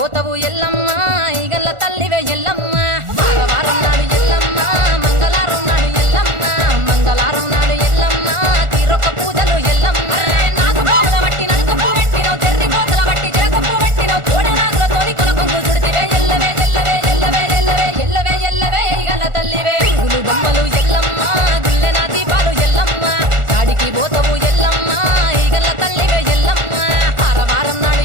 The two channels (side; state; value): left; late; 1.4 ms